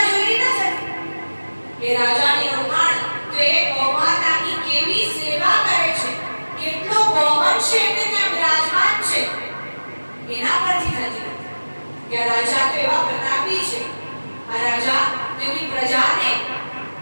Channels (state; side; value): inverted; both; correlation -1.00